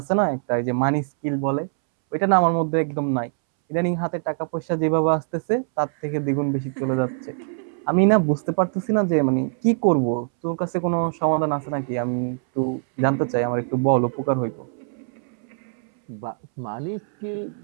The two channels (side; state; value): left; silent; 63 dB below the other